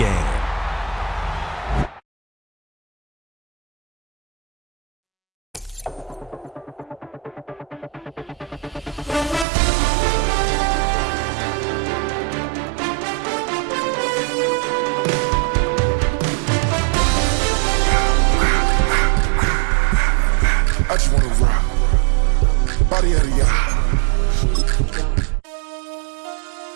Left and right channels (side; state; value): left; drops out; at 9.5 s